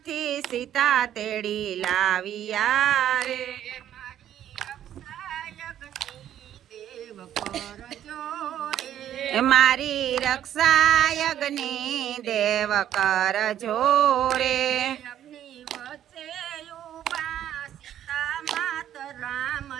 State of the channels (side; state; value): left; quieter; 11.0 dB